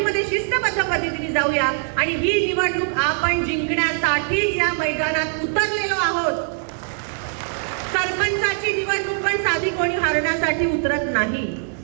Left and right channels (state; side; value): silent; left; digital silence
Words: शिस्तबद्ध पद्धतीने जाऊया आणि ही निवडणूक आपण जिंकण्यासाठीच या मैदानात उतरलेलो आहोत. सरपंचाची निवडणूक पण साधी कोणी हारण्यासाठी उतरत नाही.